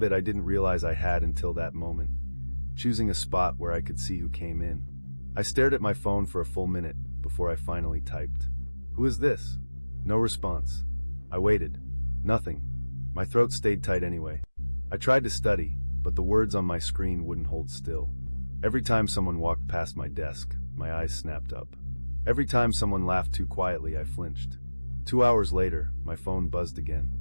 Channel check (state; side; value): inverted; both; correlation -1.00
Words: I didn't realize I had until that moment, choosing a spot where I could see who came in. I stared at my phone for a full minute before I finally typed. "Who is this?" No response. I waited. Nothing. My throat stayed tight anyway. I tried to study, but the words on my screen wouldn't hold still. Every time someone walked past my desk, my eyes snapped up. Every time someone laughed too quietly, I flinched. 2 hours later, my phone buzzed again.